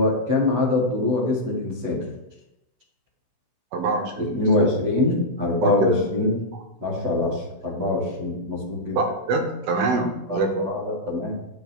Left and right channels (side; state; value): left; late; 16 ms